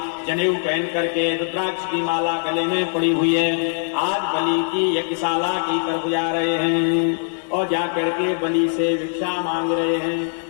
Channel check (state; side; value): silent; right; 65 dB below the other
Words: जनेऊ पहन करके रुद्राक्ष की माला गले में पड़ी हुई है। आज बलि की यज्ञशाला की तरफ जा रहे हैं और जाकर के बलि से भिक्षा मांग रहे हैं।